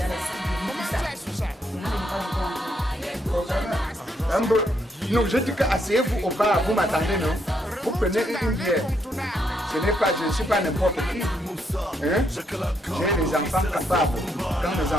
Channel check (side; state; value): both; normal; correlation 0.76